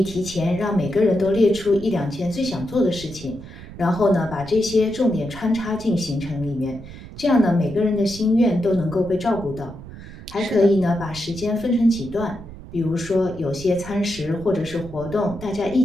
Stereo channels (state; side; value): noise; right; rumble, 14 dB below the sound